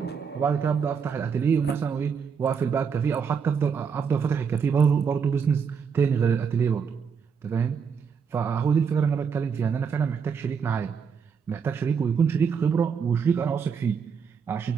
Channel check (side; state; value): left; quieter; 6.4 dB